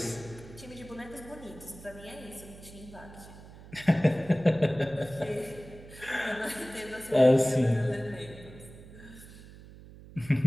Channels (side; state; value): right; noise; hum, 18 dB below the sound